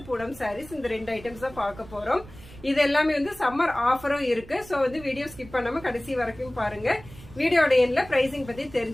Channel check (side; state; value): right; noise; rumble, 18 dB below the sound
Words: பூனம் சாரீஸ். இந்த ரெண்டு ஐட்டம்ஸ் தான் பார்க்க போறோம். இது எல்லாமே வந்து சம்மர் ஆஃபரும் இருக்கு. சோ வந்து வீடியோ ஸ்கிப் பண்ணாம கடைசி வரைக்கும் பாருங்க. வீடியோட எண்ட்ல பிரைசிங் பத்தி